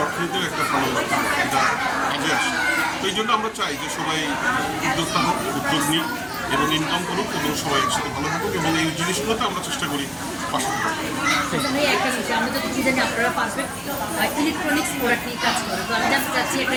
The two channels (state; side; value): identical; both; correlation 1.00